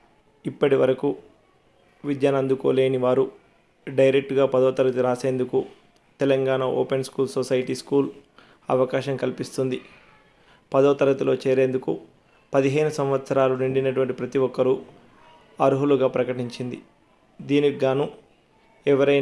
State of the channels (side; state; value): both; identical; correlation 1.00